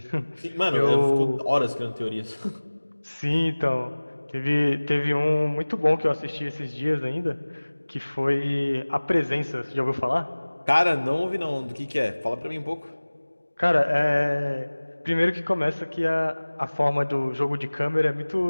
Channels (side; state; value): both; inverted; correlation -1.00